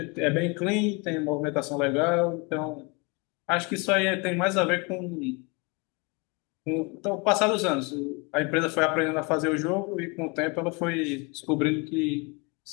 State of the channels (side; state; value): right; quieter; 29.3 dB